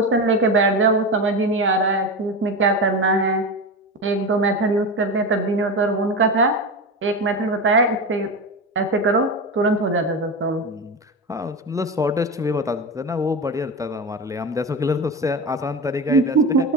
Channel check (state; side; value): normal; both; correlation 0.21